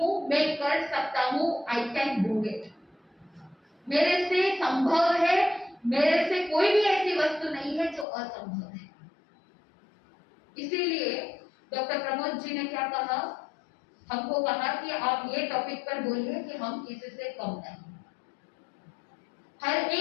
मैं कर सकता हूँ, आई कैन डू इट। मेरे से संभव है, मेरे से कोई भी ऐसी वस्तु नहीं है जो असंभव है। इसीलिए डॉक्टर प्रमोद जी ने क्या कहा? हमको कहा कि आप ये टॉपिक पर बोलिए कि हम किसी से कम नहीं। हर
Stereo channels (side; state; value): right; drops out; at 8.1 s